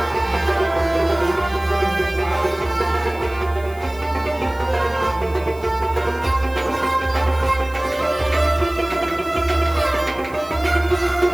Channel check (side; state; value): right; noise; hiss, 24 dB below the sound